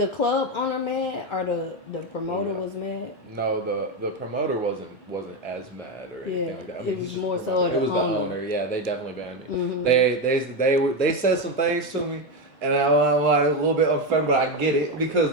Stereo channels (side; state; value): both; normal; correlation 0.11